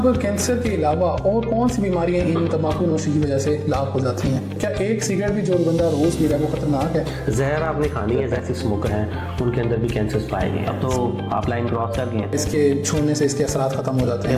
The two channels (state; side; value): identical; both; correlation 1.00